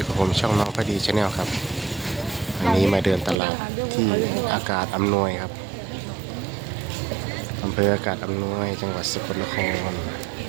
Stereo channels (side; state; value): left; drops out; at 3.4 s